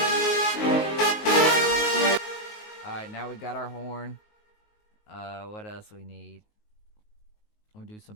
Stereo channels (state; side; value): late; right; 19 ms